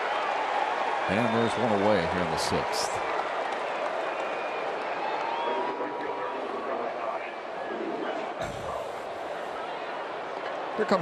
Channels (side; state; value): both; identical; correlation 1.00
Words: And there's one away here in the 6th. Here